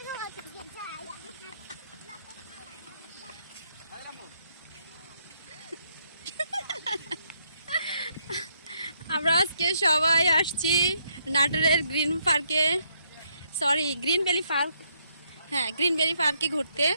আমরা আজকে সবাই আসছি নাটোরের গ্রিন পার্কে, সরি গ্রিন ভ্যালি পার্ক। হ্যাঁ, গ্রিন ভ্যালি পার্কে ঘুরতে।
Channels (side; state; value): both; inverted; correlation -0.74